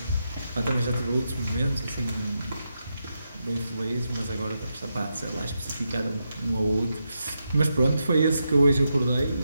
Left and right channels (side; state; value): both; inverted; correlation -0.86